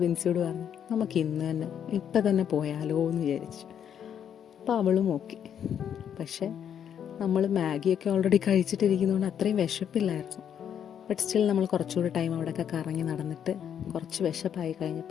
വിൻസിയോട് പറഞ്ഞു, നമുക്ക് ഇന്ന് തന്നെ ഇപ്പം തന്നെ പോയാലോ എന്ന് വിചാരിച്ചു. അപ്പോൾ അവളും ഓക്കെ. പക്ഷേ നമ്മൾ മാഗിയൊക്കെ ഓൾറെഡി കഴിച്ചിട്ടിരിക്കുന്നതുകൊണ്ട് അത്രയും വിശപ്പില്ലായിരുന്നു. ബട്ട് സ്റ്റിൽ നമ്മൾ കുറച്ചുകൂടി ടൈം അവിടെയൊക്കെ കറങ്ങി നടന്നിട്ട് കുറച്ച് വിശപ്പായി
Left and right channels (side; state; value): right; quieter; 8.8 dB